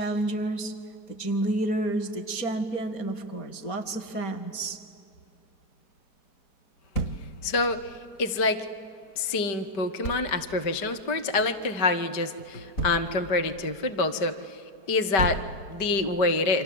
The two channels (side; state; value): right; late; 5.1 ms